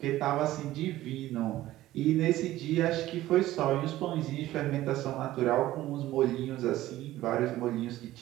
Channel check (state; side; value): quieter; left; 15.4 dB